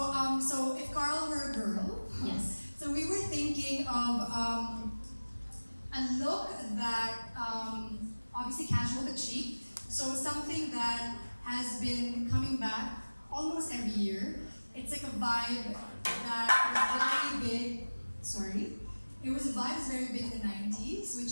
so if Carl were a girl, Yes. so we were thinking of a look that obviously casual but chic. So something that has been coming back almost every year. It's like a vibe that was very big. Sorry, it was a vibe that's very big in the '90s,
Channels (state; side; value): inverted; both; correlation -1.00